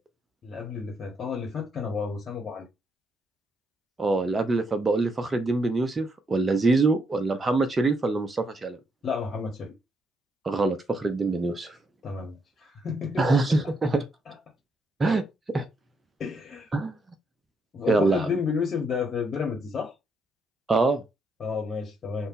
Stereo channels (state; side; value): normal; both; correlation 0.76